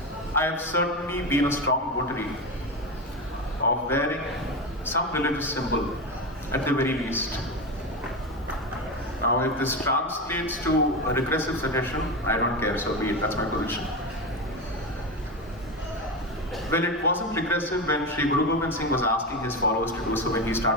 I have certainly been a strong votary of wearing some religious symbol at the very least. Now, if this translates to a regressive suggestion, I don't care, so be it, that's my position. Well, it wasn't regressive when Sri Guru Gobind Singh was asking his followers to do so when he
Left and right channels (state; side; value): normal; both; correlation 0.18